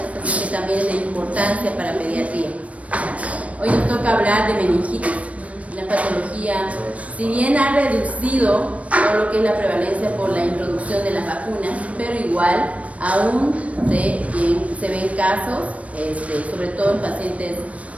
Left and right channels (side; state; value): left; late; 0.065 ms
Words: así que también es de importancia para pediatría. Hoy nos toca hablar de meningitis, una patología, si bien ha reducido todo lo que es la prevalencia por la introducción de las vacunas, pero igual aún se ven casos, sobre todo en pacientes